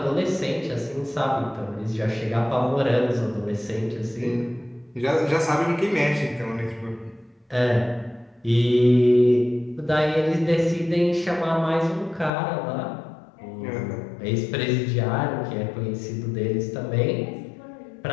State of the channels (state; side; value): drops out; right; at 12.3 s